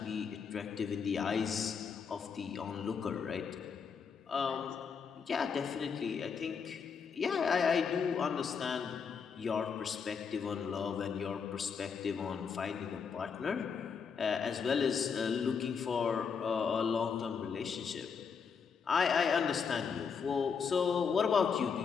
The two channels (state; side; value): quieter; right; 6.2 dB